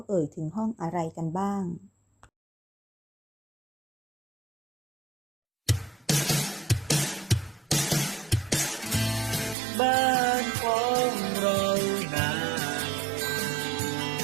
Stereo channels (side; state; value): left; drops out; at 9.6 s